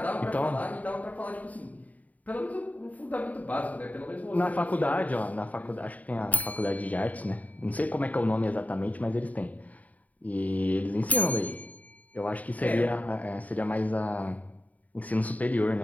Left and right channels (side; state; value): right; late; 0.073 ms